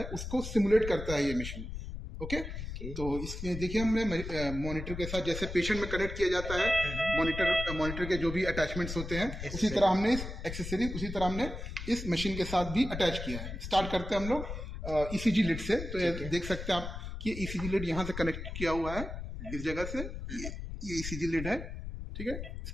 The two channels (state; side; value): noise; left; rumble, 7 dB below the sound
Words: उसको सिमुलेट करता है ये मशीन। ओके तो इसमें देखिए हमने मॉनिटर के साथ जैसे पेशेंट में कनेक्ट किया जाता है, मॉनिटर के जो भी अटैचमेंट्स होते हैं उसी तरह हमने इस एक्सेसरीज उसी तरह हमने इस मशीन के साथ भी अटैच किया है। स्टार्ट करते हैं हम लोग ECG लिड से। तो ये देख सकते हैं आप कि ECG लिड यहाँ से कनेक्ट किया हुआ है इस जगह से, ये ECG लिड है, ठीक है।